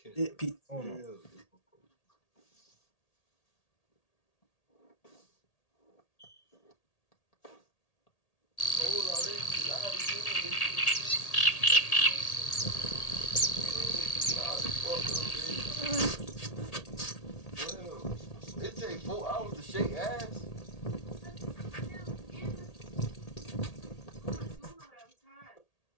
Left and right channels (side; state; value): right; late; 1.8 ms